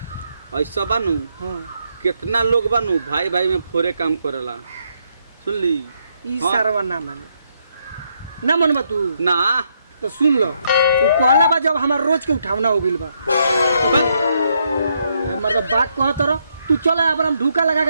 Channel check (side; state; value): both; inverted; correlation -0.76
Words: ऐसा बानू हां कितना लोग बानू भाई भाई में फोरे काम करेला सुन ली ई हाँ। सारवा ना माने ना मनबा तू ना तो सुन लो वो कहला बा जब हमार रोज के उठावना हो गइल बा हमार तो बात कहत रह तू चल अब हम ढूका लगा